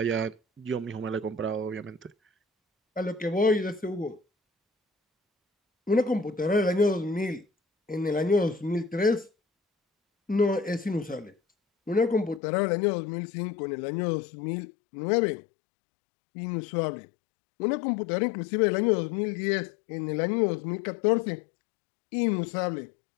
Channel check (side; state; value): right; drops out; at 12.4 s